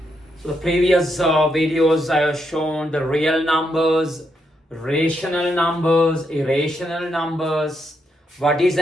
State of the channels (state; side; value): normal; both; correlation 0.80